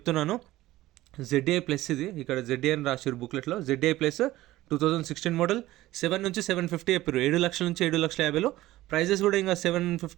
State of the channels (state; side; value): quieter; left; 16.4 dB